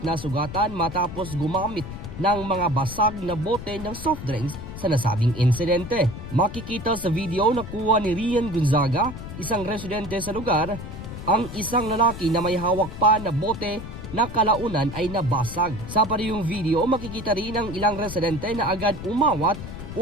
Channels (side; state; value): left; noise; rumble, 10 dB below the sound